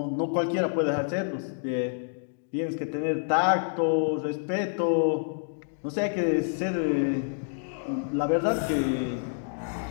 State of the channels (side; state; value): right; silent; digital silence